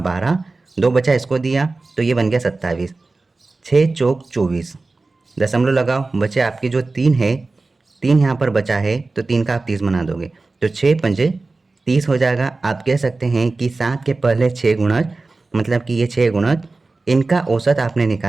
2 बचा इसको दिया तो ये बन गया 27, 6 चौक 24, दशमलव लगाओ, बचे आपकी जो 3 है, 3 यहाँ पर बचा है तो 3 का आप 30 बना दोगे तो 6 पंजे 30 हो जाएगा। आप कह सकते हैं कि 7 के पहले 6 गुणज मतलब कि ये 6 गुणज, इनका औसत आपने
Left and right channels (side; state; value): left; quieter; 3.5 dB